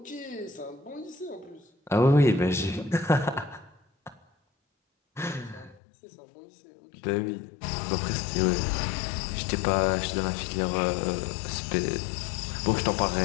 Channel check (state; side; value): drops out; right; at 5.8 s